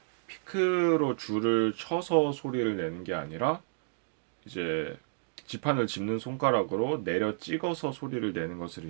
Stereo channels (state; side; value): silent; left; digital silence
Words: 피크로 줄을 쳐서 소리를 내는 게 아니라 이제 지판을 짚는 손가락으로 내려 찍어서 소리를 내는 것을